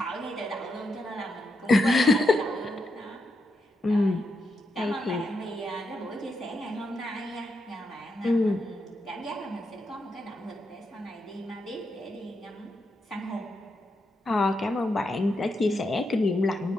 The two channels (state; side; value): normal; both; correlation 0.83